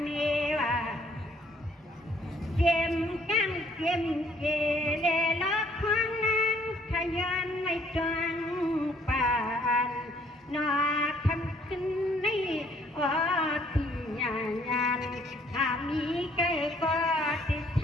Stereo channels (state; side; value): normal; both; correlation 0.63